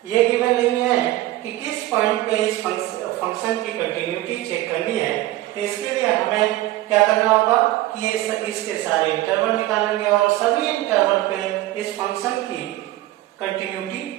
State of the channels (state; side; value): quieter; left; 16.4 dB